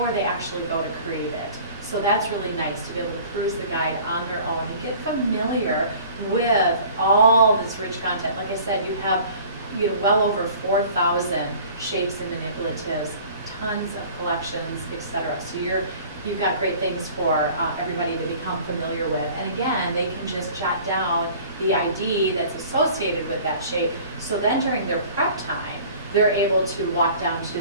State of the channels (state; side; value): inverted; both; correlation -0.47